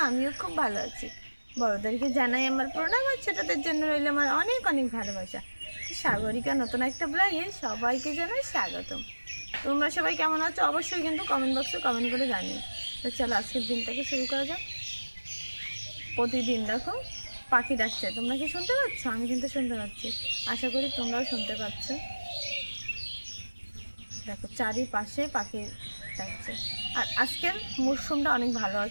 আমিও খুব ভালো আছি। বড়দেরকে জানাই আমার প্রণাম, আর ছোটদের জন্য রইল আমার অনেক অনেক ভালোবাসা। তো সাগরিকা নতুন একটা ব্লগে সবাইকে জানাই স্বাগতম। তোমরা সবাই কেমন আছো অবশ্যই কিন্তু কমেন্ট বক্সে কমেন্ট করে জানিও। তো চলো আজকের দিনটাকে শুরু করা যাক। প্রতিদিন দেখো পাখি ডাকছে, তোমরা কি শুনতে পাচ্ছ? আমি কিন্তু শুনতে পাচ্ছি, আশা করি তোমরাও শুনতে পাচ্ছ। দেখো চারিপাশে পাখি ডাকছে। আর আজকের মরশুমটা অনেক ভালো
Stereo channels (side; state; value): both; inverted; correlation -1.00